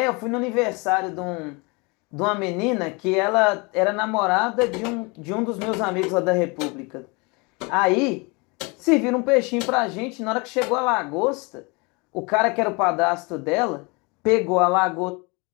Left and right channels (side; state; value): right; quieter; 28.7 dB